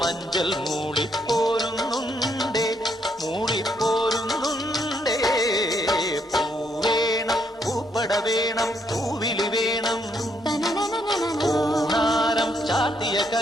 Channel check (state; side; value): normal; both; correlation 0.73